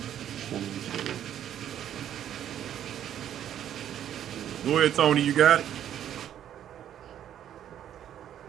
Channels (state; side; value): quieter; left; 10.5 dB